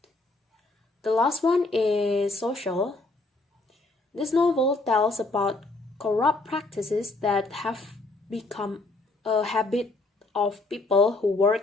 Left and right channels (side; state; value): right; quieter; 3.1 dB